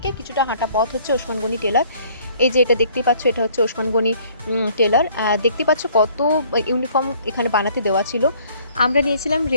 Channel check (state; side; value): inverted; both; correlation -0.58